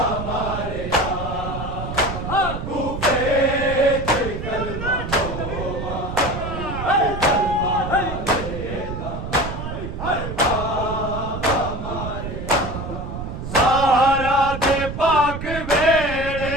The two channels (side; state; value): right; noise; rumble, 6 dB below the sound